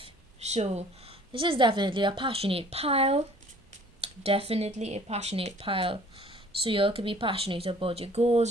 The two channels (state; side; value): normal; both; correlation 0.53